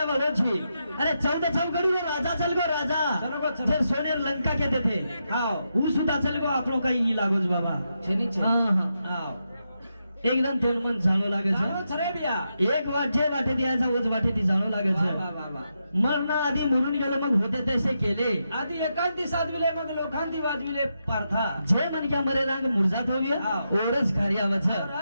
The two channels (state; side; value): inverted; both; correlation -0.85